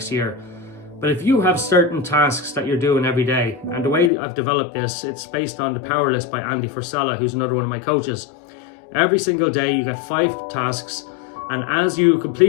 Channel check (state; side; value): drops out; right; at 4.1 s